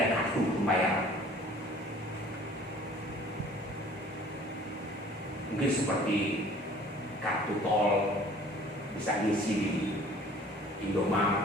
kartu pembayaran. Mungkin seperti kartu tol bisa diisi di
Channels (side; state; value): both; normal; correlation 0.50